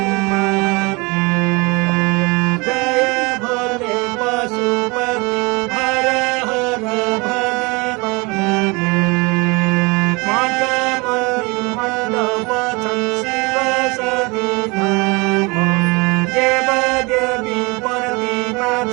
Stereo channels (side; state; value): left; quieter; 27.0 dB